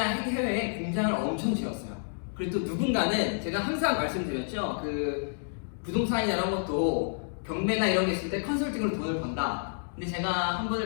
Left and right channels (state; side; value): silent; right; digital silence